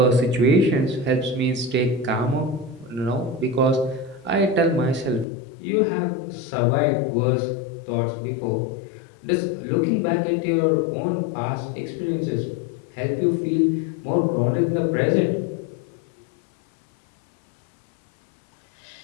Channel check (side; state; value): right; drops out; at 5.2 s